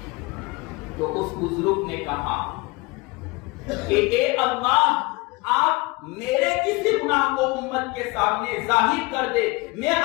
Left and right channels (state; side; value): quieter; right; 25.0 dB